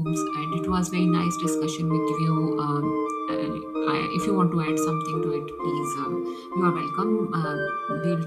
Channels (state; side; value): identical; both; correlation 1.00